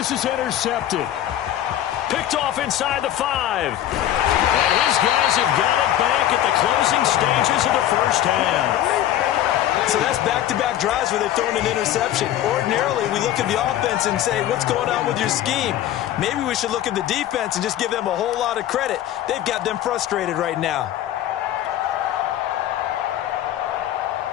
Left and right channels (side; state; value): right; quieter; 12.2 dB